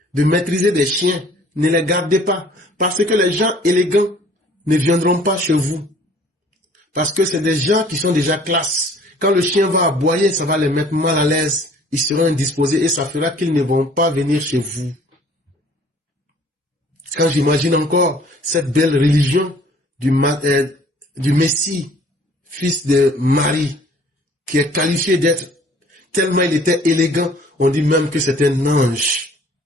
de maîtriser des chiens, ne les gardez pas parce que les gens élégants ne viendront pas chez vous. Parce que c'est des gens qui sont déjà classe. Quand le chien va aboyer, ça va les mettre mal à l'aise. Ils seront indisposés et ça fera qu'ils ne vont pas venir chez vous. Quand j'imagine encore cette belle religion du Messie, fils de Marie, qui est qualifié d'être, tellement il était élégant, on dit même que c'est un ange.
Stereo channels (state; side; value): normal; both; correlation 0.54